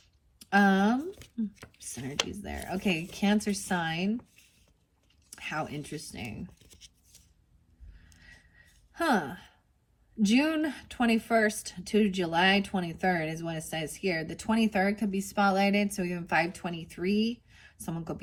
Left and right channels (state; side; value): identical; both; correlation 1.00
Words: Synergy's there. Okay, Cancer sign. How interesting. June 21st to July 23rd is what it says here. The 23rd could be spotlighted, so even 523. Someone could